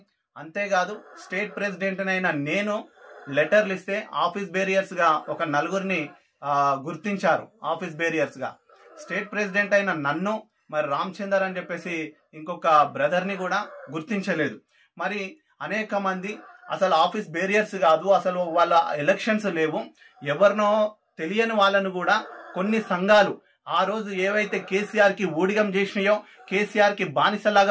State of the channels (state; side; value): identical; both; correlation 1.00